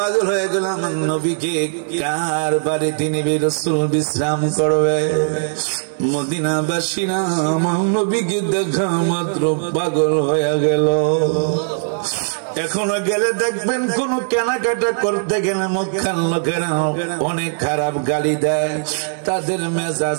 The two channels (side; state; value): left; silent; digital silence